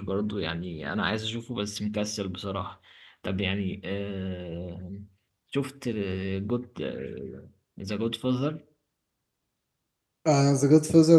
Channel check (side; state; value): both; identical; correlation 1.00